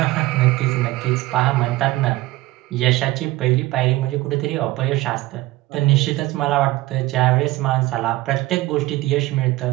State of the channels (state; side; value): quieter; left; 18.3 dB